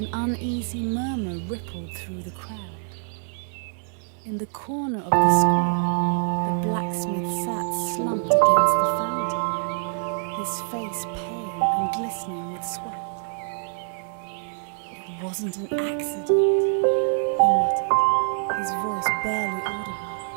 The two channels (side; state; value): left; silent; digital silence